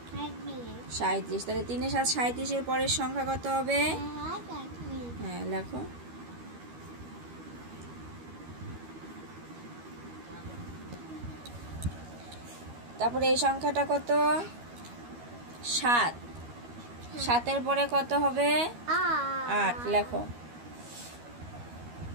37, তাহলে 3 এ 7 37 এর পরের সংখ্যা কত হবে? হ্যাঁ, লেখো। তারপরে এই সংখ্যাটা কত? 7, 7 এর পরে কত হবে? 8, লেখো।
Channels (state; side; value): late; left; 13 ms